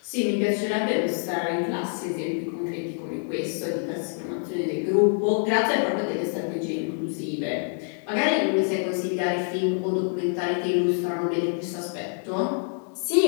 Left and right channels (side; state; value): right; silent; 56 dB below the other